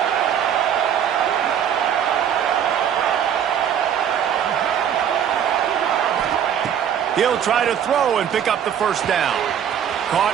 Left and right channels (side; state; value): left; quieter; 9.0 dB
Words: He'll try to throw and pick up the 1st down. Caught